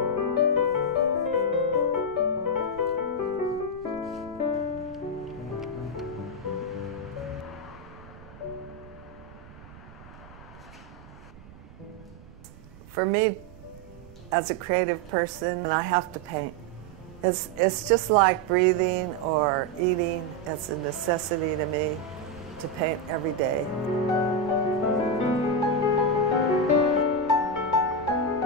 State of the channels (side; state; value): right; noise; rumble, 20 dB below the sound